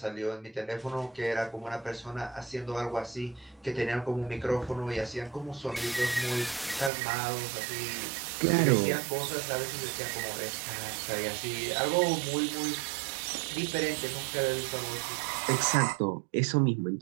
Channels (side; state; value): left; drops out; at 6.9 s